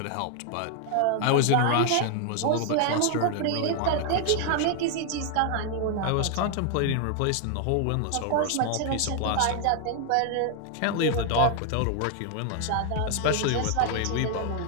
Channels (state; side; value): different; both; correlation 0.00